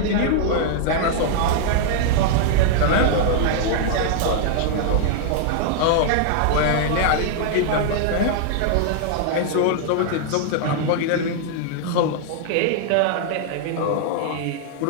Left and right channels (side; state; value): both; different; correlation -0.01